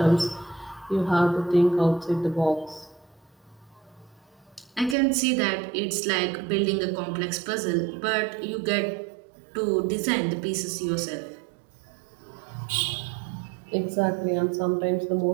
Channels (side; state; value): left; drops out; at 5.0 s